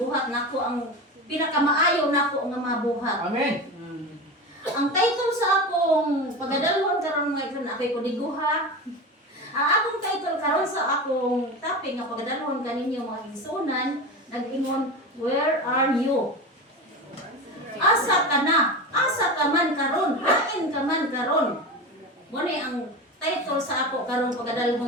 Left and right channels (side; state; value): both; normal; correlation 0.26